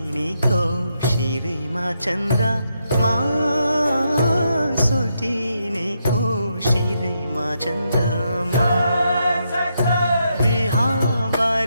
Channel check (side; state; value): both; inverted; correlation -0.81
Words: शिरमा चन्द्रमा सोल्टिनीको शिरमा चन्द्रमा